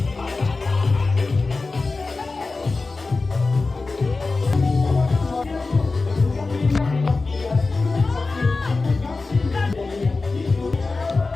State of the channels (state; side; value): quieter; right; 3.7 dB